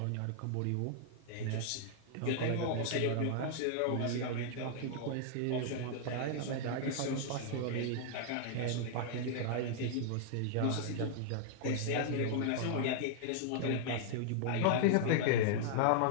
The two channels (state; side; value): different; both; correlation -0.01